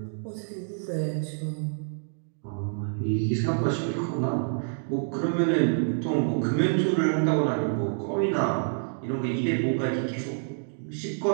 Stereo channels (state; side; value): silent; left; digital silence